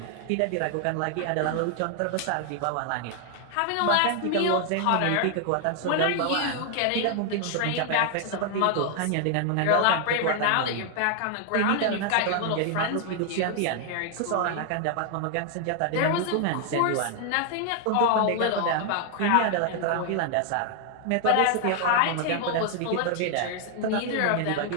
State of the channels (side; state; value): both; different; correlation 0.00